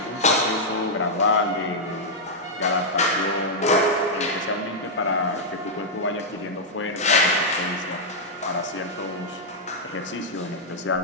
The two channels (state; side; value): normal; both; correlation -0.06